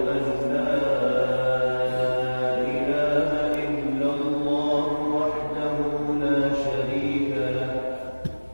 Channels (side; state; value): both; inverted; correlation -1.00